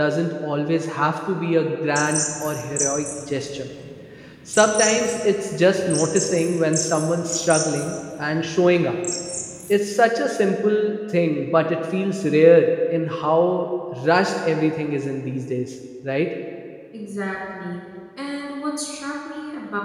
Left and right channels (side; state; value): both; identical; correlation 1.00